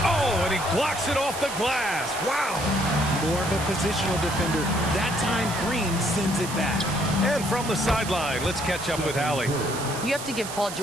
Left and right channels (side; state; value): right; noise; hiss, 9 dB below the sound